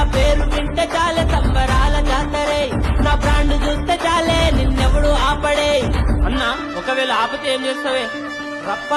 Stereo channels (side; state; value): both; identical; correlation 1.00